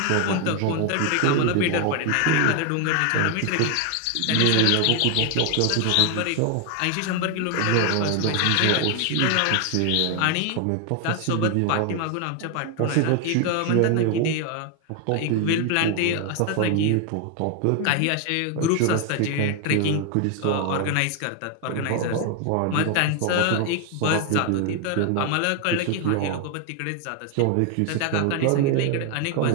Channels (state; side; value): different; both; correlation 0.01